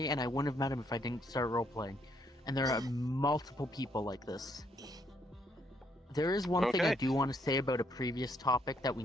and I wouldn't have met him if I didn't start roleplaying. And there are multiple people like this. There is one thing I Okay. do want to say about a previous topic that we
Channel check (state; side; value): normal; both; correlation 0.72